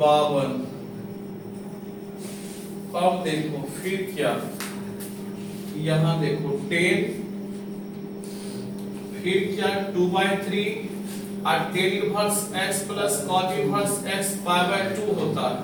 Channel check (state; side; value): identical; both; correlation 1.00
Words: 52। अब देखो फिर क्या यहां देखो 10 फिर क्या 2/3 और tan inverse x plus cot inverse x π/2 होता है।